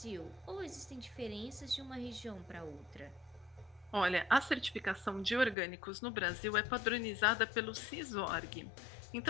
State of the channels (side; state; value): right; drops out; at 5.6 s